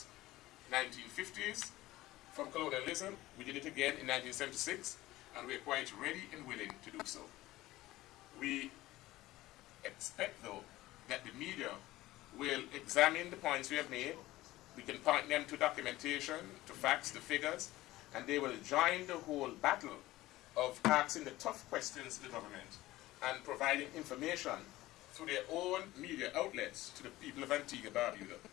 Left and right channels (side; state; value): right; quieter; 17.2 dB